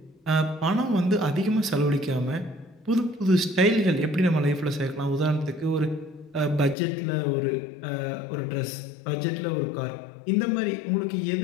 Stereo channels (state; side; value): drops out; right; at 6.8 s